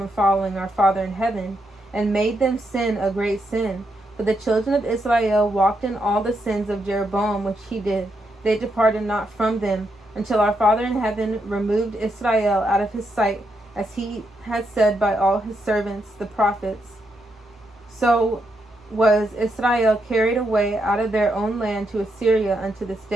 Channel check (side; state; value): both; normal; correlation 0.80